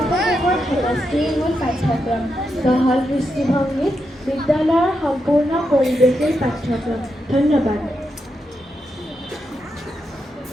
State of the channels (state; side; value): normal; both; correlation 0.84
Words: সহজ দৃষ্টিভংগীত বিদ্যালয়ৰ সম্পূৰ্ণ পৰিৱেশৰ পাঠ্যক্ৰম। ধন্যবাদ।